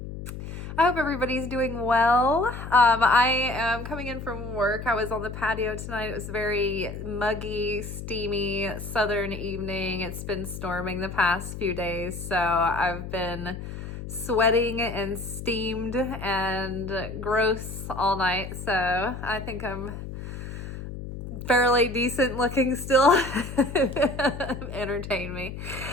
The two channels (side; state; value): left; noise; hum, 9 dB below the sound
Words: I hope everybody's doing well. I am coming in from work. I was on the patio tonight. It was very muggy, steamy, southern evening. It's been storming the past few days, so I've been sweating and steamed and gross all night. So I think I'm fairly decent looking still. Entertain me.